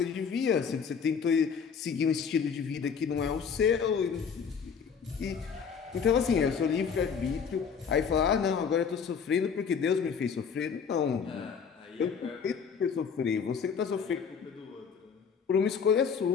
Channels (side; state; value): right; quieter; 6.5 dB